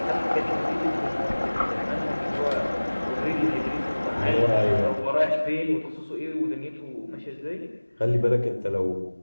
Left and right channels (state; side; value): inverted; both; correlation -1.00